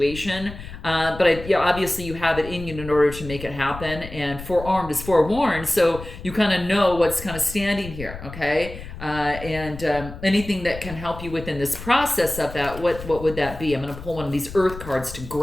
But obviously you have it in you in order to make it happen. And forearmed is forewarned, so you kind of know what's kind of standing here, okay? And anything that can help you within this process of that, what would that be? I'm going to pull one of these earth cards to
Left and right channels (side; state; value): left; noise; rumble, 12 dB below the sound